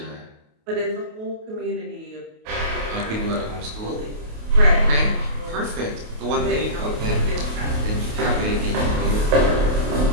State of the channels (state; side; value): late; left; 28 ms